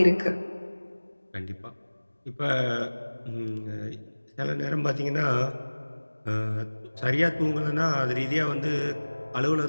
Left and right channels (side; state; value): both; inverted; correlation -1.00